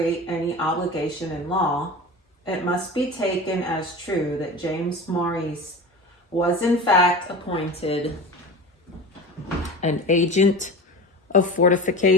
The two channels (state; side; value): normal; both; correlation 0.31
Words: any obligation in law, it must be taken as true that James Maurice was in fact appointed an agent of